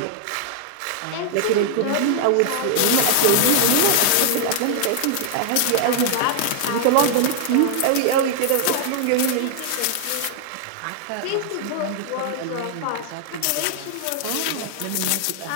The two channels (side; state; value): both; different; correlation 0.00